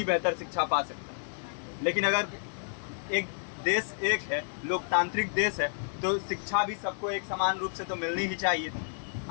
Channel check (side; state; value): right; silent; digital silence